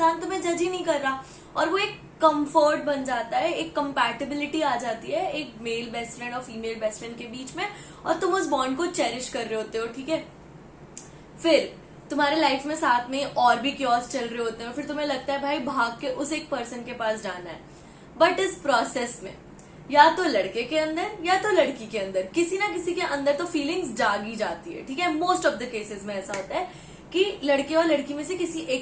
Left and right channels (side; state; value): both; identical; correlation 1.00